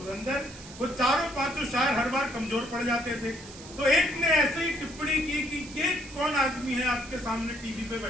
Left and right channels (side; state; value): right; noise; hiss, 16 dB below the sound